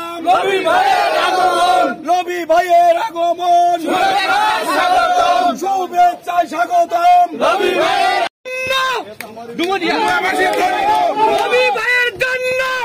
ভাইয়ের আগমন, নবী ভাইয়ের আগমন, শুভেচ্ছায় স্বাগতম। নবী ভাইয়ের নবী ভাইয়ের জন্য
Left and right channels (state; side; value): identical; both; correlation 1.00